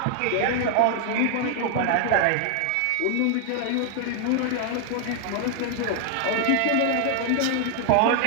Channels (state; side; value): different; both; correlation 0.00